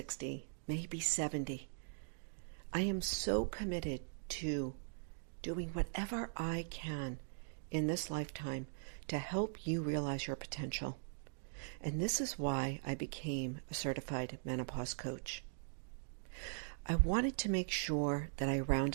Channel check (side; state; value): left; silent; digital silence